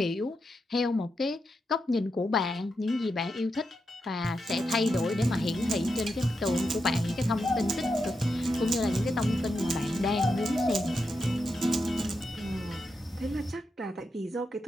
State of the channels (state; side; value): normal; both; correlation 0.86